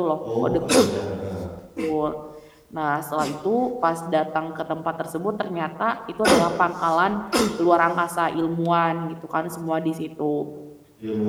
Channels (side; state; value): both; identical; correlation 1.00